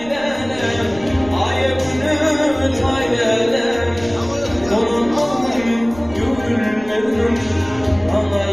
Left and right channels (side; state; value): right; noise; rumble, 18 dB below the sound